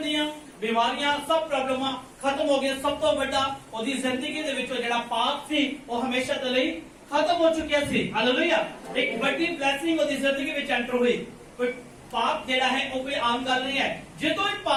ਦੀਆਂ ਬਿਮਾਰੀਆਂ ਸਭ ਪ੍ਰੋਬਲਮਾਂ ਖਤਮ ਹੋ ਗਈਆਂ। ਸਭ ਤੋਂ ਵੱਡਾ ਉਹਦੀ ਜ਼ਿੰਦਗੀ ਦੇ ਵਿੱਚੋਂ ਜਿਹੜਾ ਪਾਪ ਸੀ ਉਹ ਹਮੇਸ਼ਾ ਦੇ ਲਈ ਖਤਮ ਹੋ ਚੁੱਕਿਆ ਸੀ। ਹਾਲੇਲੂਇਆ। ਇੱਕ ਵੱਡੀ ਬਲੇਸਿੰਗ ਉਹਦੀ ਜ਼ਿੰਦਗੀ ਵਿੱਚ ਐਂਟਰ ਹੋਈ। ਕੋਈ ਪਾਪ ਜਿਹੜਾ ਹੈ ਉਹ ਕੋਈ ਆਮ ਗੱਲ ਨਹੀਂ ਹੈ। ਜਦੋਂ ਇਹ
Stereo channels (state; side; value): identical; both; correlation 1.00